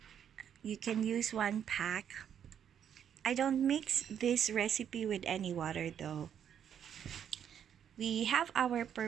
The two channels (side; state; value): left; quieter; 8.9 dB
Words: You can use 1 pack. I don't mix this recipe with any water though. We have our